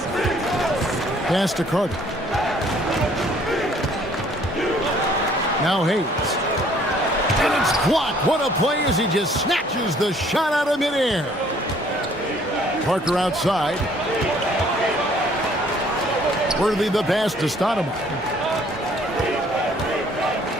Pass to Carter. Now Hayes. And it's blocked. What a play as he just snatches the shot out of midair. Parker outside. Worthy the pass to Stoudemire.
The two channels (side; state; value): both; normal; correlation 0.60